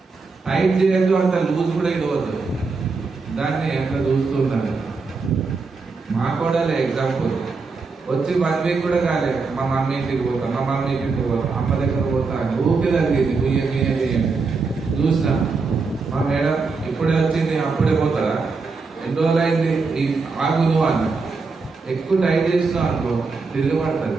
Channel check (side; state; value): left; quieter; 4.4 dB